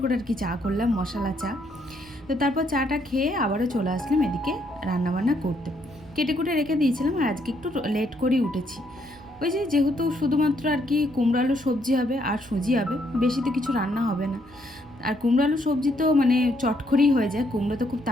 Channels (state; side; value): noise; right; hum, 25 dB below the sound